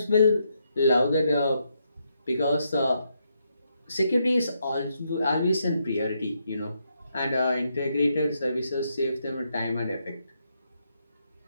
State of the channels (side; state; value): both; inverted; correlation -0.79